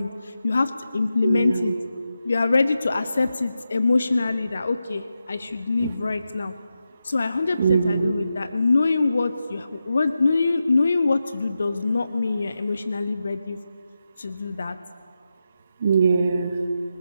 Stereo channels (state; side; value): inverted; both; correlation -0.89